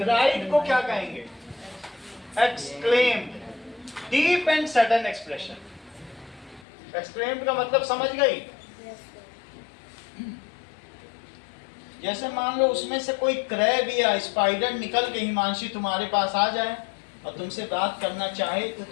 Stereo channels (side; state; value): right; drops out; at 6.7 s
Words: को क्या कहेंगे? Exclaimed. Deep and sudden expression. Exclaimed का मतलब समझ गई? जैसे मान लो उसमें से कोई क्रैब या स्पाइडर निकल के हिमांशी तुम्हारे पास आ जाए और तुमसे बात करना चाहे तो